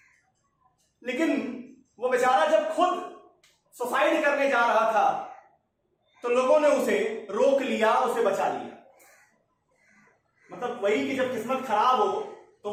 लेकिन वो बेचारा जब खुद सुसाइड करने जा रहा था तो लोगों ने उसे रोक लिया, उसे बचा लिया। मतलब वही कि जब किस्मत खराब हो तो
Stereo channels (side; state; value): both; identical; correlation 1.00